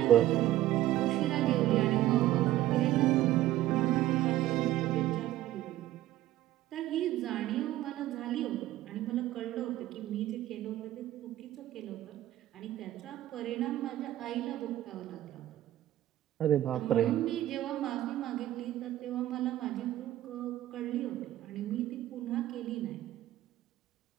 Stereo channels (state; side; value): quieter; left; 14.3 dB